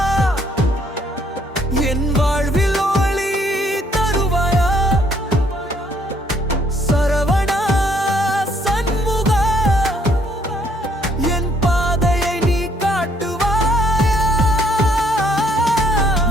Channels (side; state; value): both; normal; correlation 0.67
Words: என் வாழ்வில் ஒளி தருவாயா, சரவணா சண்முகா, என் பாதையை நீ காட்டுவாயா.